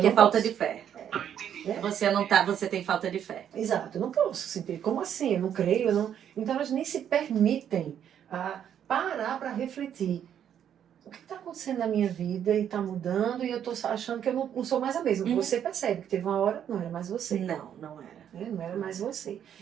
é falta de fé. Você não tá, você tem falta de fé. Exato, eu não posso sentir. Como assim? Eu não creio, eu não... Então elas nem se permitem parar para refletir. O que está acontecendo na minha vida e está mudando e eu estou achando que eu não sou mais a mesma. Você percebe que teve uma hora, não era mais você. Não era. Não era mais você.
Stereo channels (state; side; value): quieter; left; 9.4 dB